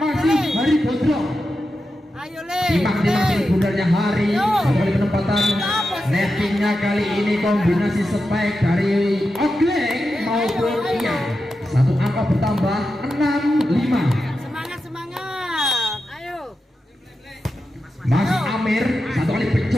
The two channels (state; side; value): normal; both; correlation 0.90